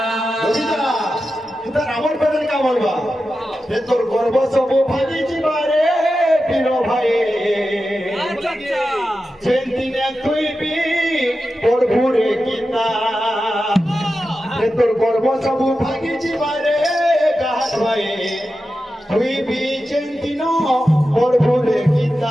বুঝিতা তুই আমার পেদল কা বলবা হে তোর গর্ব সব ভাগি জিবারে প্রিয় ভাই যেদিনে তুই বি পড়বুরে গীতা হে তোর গর্ব সব ভাগি জিবারে গাহাত ভাই তুই বি যেদিন পড়বুরে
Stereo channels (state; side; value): normal; both; correlation 0.91